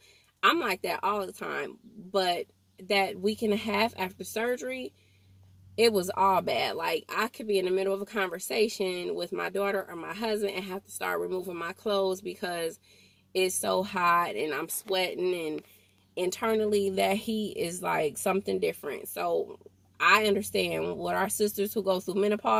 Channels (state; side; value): identical; both; correlation 1.00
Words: I'm like that all the time. But that week and a half after surgery, it was all bad. Like I could be in the middle of a conversation with my daughter or my husband and have to start removing my clothes because it's so hot and I'm sweating, and internally that heat is like something different. So I understand what our sisters who go through